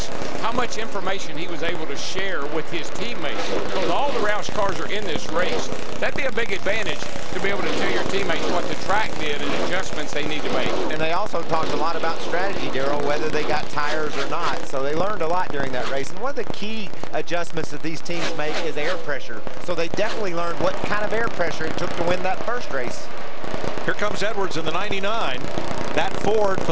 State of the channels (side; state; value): both; identical; correlation 1.00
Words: how much information he was able to share with his teammates. Because all the Roush cars are in this race. That'd be a big advantage to be able to tell your teammates what the track did and adjustments they need to make. And they also talked a lot about strategy, Daryl, whether they got tires or not. So they learned a lot during that race. And one of the key adjustments that these teams make is air pressure. So they definitely learned what kind of air pressure it took to win that first race. Here comes Edwards in the 99. That Ford